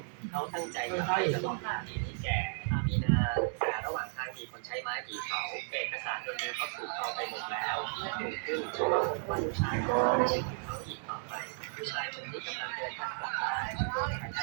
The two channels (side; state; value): left; silent; 55 dB below the other